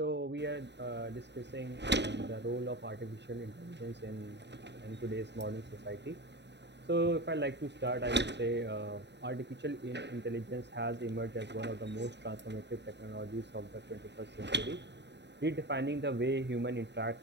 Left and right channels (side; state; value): left; late; 0.50 ms